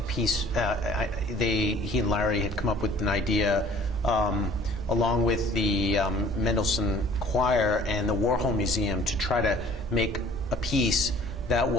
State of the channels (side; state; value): both; normal; correlation 0.52